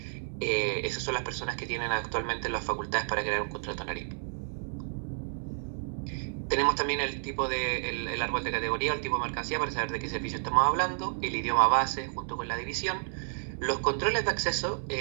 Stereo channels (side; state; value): left; silent; digital silence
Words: Esas son las personas que tienen actualmente las facultades para crear un contrato en Ariba. Tenemos también el tipo de el árbol de categoría, el tipo de mercancía para saber de qué servicio estamos hablando, el idioma base junto con la división, los controles de acceso,